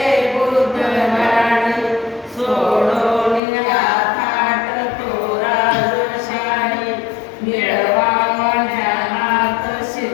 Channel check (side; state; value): right; drops out; at 3.4 s